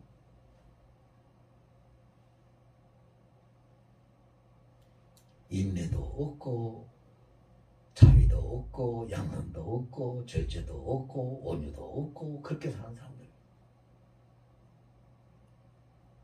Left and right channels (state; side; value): identical; both; correlation 1.00